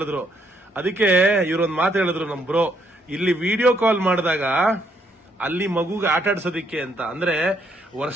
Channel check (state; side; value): normal; both; correlation 0.72